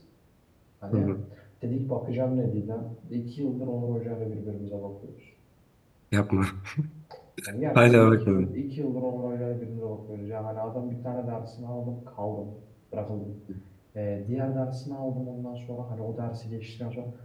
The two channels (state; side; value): identical; both; correlation 1.00